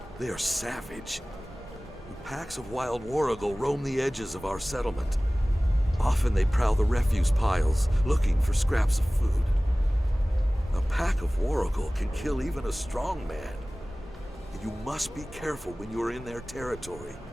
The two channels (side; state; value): both; normal; correlation 0.98